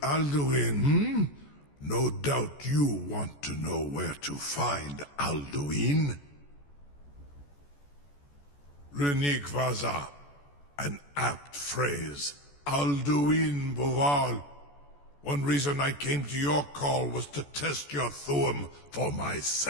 Alduin, No doubt you want to know where to find Alduin. Renigvaza, an apt phrase. Alduin Boval. One reason I came to your call was to test your Thuum for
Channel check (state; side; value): late; right; 14 ms